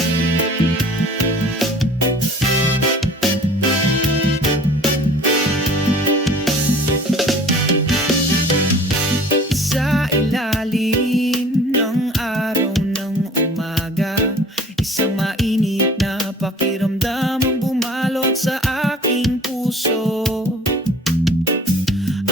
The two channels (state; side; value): normal; both; correlation 0.48